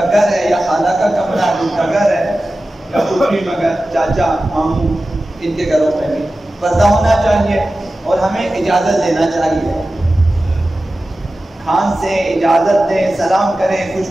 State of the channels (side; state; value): both; normal; correlation 0.95